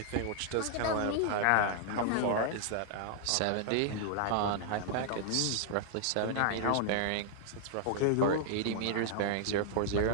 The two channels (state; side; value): different; both; correlation -0.01